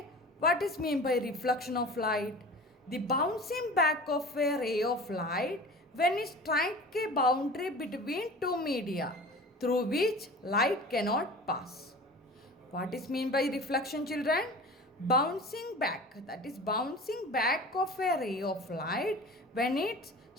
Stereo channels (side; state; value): both; normal; correlation 0.39